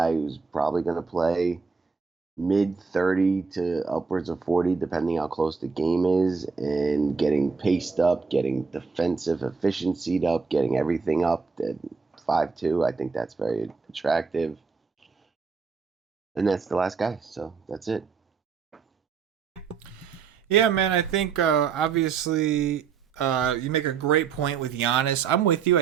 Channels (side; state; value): left; quieter; 5.3 dB